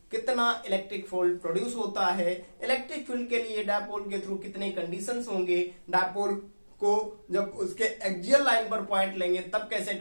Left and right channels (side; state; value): both; inverted; correlation -1.00